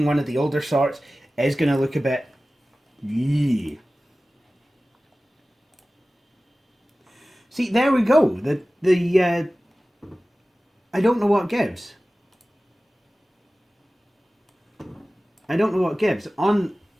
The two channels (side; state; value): both; normal; correlation 0.97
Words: one of the older sorts, is going to look a bit... Yeah. See, there we go. I don't know what gives. I don't know what gives.